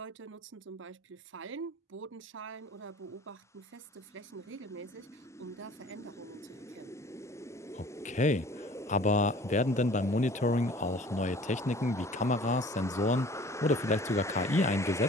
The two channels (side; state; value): both; normal; correlation 0.49